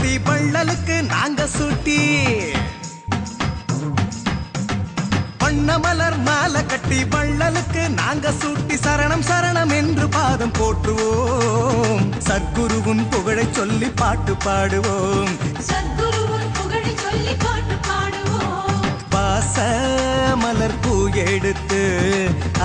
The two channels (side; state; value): both; identical; correlation 1.00